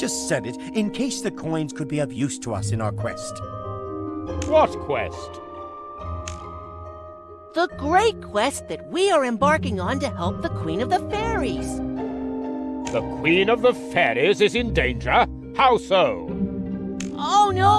said it in case the coins could be of use to us in our quest. What quest? The great quest that we are embarking on to help the Queen of the Fairies. The Queen of the Fairies is in danger? How so? Oh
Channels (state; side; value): identical; both; correlation 1.00